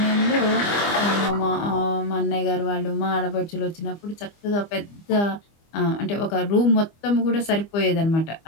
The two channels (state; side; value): late; right; 25 ms